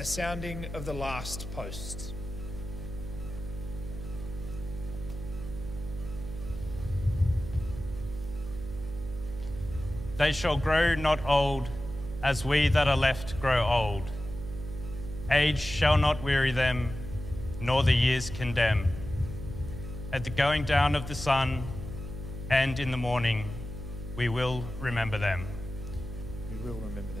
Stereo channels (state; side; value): noise; right; hum, 9 dB below the sound